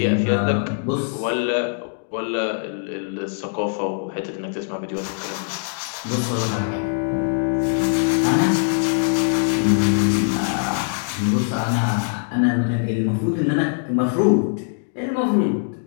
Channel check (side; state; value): right; silent; digital silence